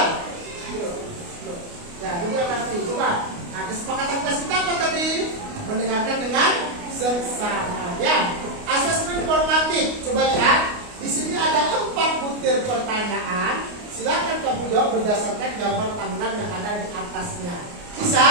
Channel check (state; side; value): late; left; 29 ms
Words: Ya, juga nanti. Coba. Nah, kesepakatan kita apa tadi? Mendengarkan dengan seksama. Ya, asesmen formatif. Coba lihat. Di sini ada 4 butir pertanyaan. Silakan kamu jawab berdasarkan gambar Tangerang yang ada di atasnya. Bisa?